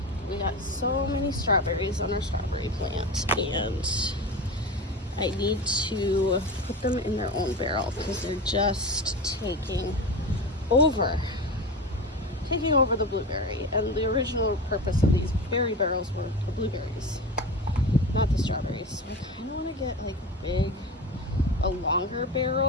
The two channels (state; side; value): normal; both; correlation 0.26